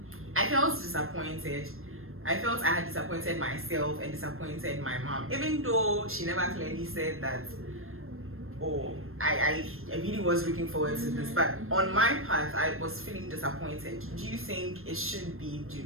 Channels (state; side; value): late; left; 0.61 ms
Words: I felt disappointed. I felt I had disappointed myself and disappointed my mom, even though she never clearly said that, oh, I really was looking forward to this. But on my path, I was feeling disappointed. Do you think it should be? Do